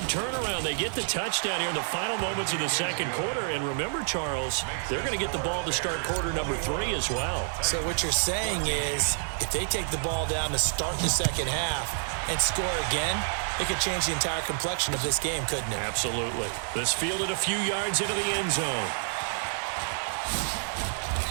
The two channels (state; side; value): silent; left; 56 dB below the other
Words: turnaround. They get the touchdown here in the final moments of the second quarter. And remember, Charles, they're going to get the ball to start quarter number 3 as well. So what you're saying is if they take the ball down to start the second half and score again, it could change the entire complexion of this game, couldn't it? Absolutely. This fielded a few yards into the end zone.